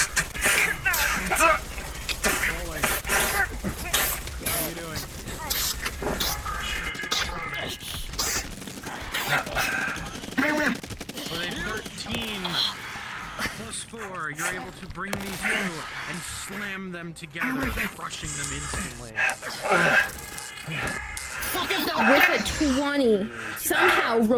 You're able to bring these two and slam them together, crushing them instantly. With a 20, somehow,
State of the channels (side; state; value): both; identical; correlation 1.00